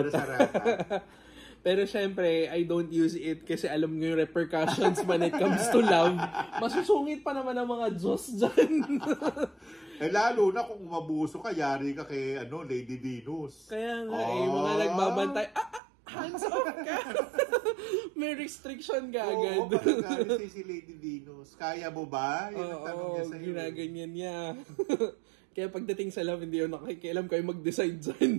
Pero syempre, I don't use it kasi alam nyo yung repercussions when it comes to love. Masusungit pa naman ang mga Diyos dyan. Lalo na kung umabuso ka, yari ka kay Lady Venus. Kaya nga mga nagbabantay, hands off ka! May restriction ka agad. Pagkakalit si Lady Venus. Kaya mo ba? Yun ang tanong niya sa'yo. Ginaganyan niya. Kaya pagdating sa love, hindi yun nakikialam kayo mag-decide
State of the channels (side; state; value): left; drops out; at 15.8 s